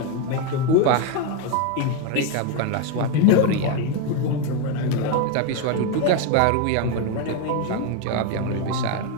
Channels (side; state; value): both; different; correlation 0.02